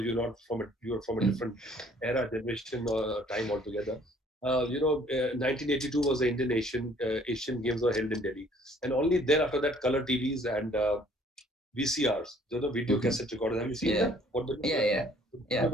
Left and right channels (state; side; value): normal; both; correlation 0.59